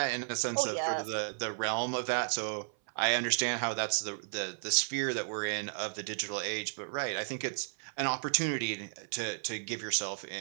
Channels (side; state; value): left; silent; 55 dB below the other